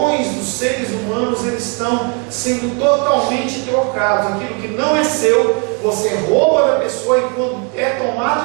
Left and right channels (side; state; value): left; quieter; 35.3 dB